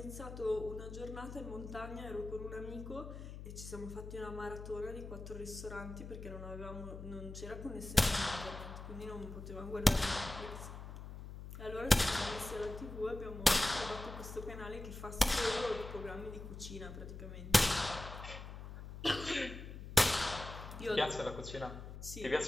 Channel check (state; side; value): noise; left; hum, 10 dB below the sound